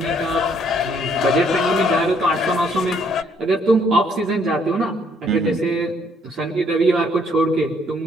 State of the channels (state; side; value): normal; both; correlation 0.66